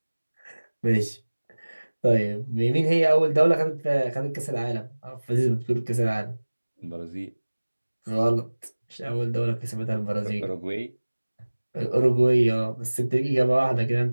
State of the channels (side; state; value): both; inverted; correlation -1.00